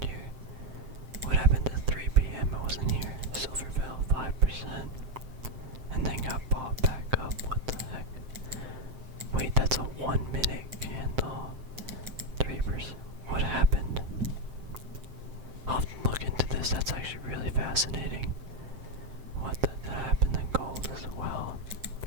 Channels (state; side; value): late; left; 7.7 ms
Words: here? What happened at 3 p.m.? I wasn't here. Silver fell 5%, and then got bought back up. What the heck? Wait, that's a 1 minute candle. 3%. What happened? I'll have to look into this. That's actually really fascinating. What did that happen in gold as well?